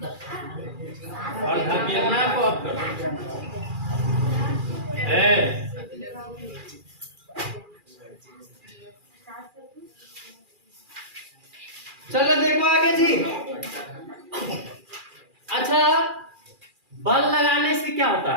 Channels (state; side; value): late; left; 2.4 ms